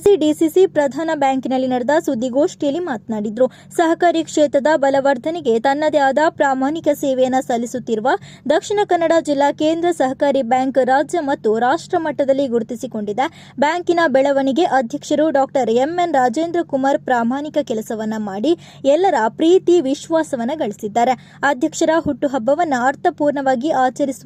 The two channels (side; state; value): both; identical; correlation 1.00